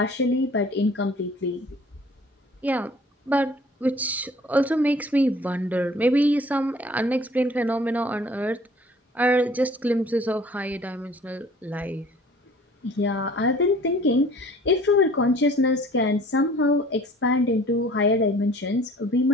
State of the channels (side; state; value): both; normal; correlation 0.51